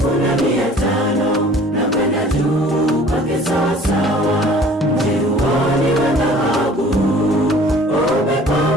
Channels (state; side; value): normal; both; correlation 0.50